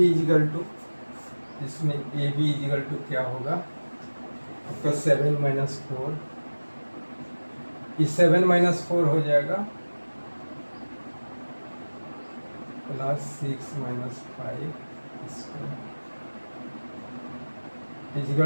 इजिकल टू, इसमें ए बी इजिकल टू क्या होगा आपका 7 माइनस 4, ये 7 माइनस 4 हो जाएगा plus 6 minus 5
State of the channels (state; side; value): inverted; both; correlation -1.00